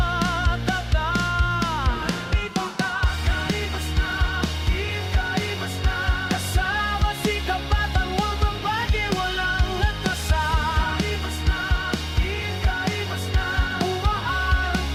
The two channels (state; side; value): identical; both; correlation 1.00